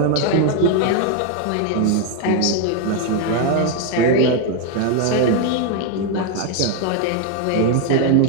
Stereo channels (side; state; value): both; different; correlation 0.01